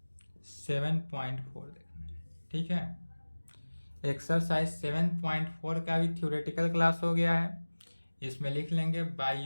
7.4 देखना है। ठीक है, एक्सरसाइज 7.4 का भी थ्योरेटिकल क्लास हो गया है। इसमें लिख लेंगे बाय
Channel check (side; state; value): both; inverted; correlation -1.00